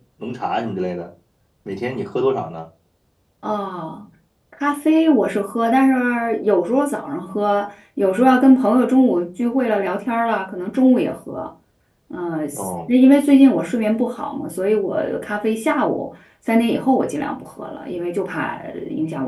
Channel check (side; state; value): both; identical; correlation 1.00